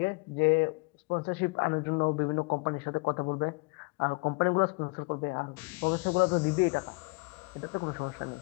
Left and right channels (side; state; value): right; quieter; 28.0 dB